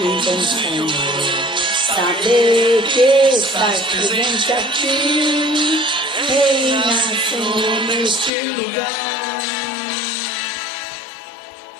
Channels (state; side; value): drops out; right; at 8.3 s